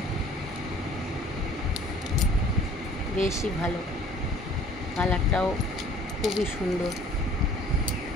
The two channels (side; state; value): both; normal; correlation 0.51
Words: বেশি ভালো। কালারটাও খুবই সুন্দর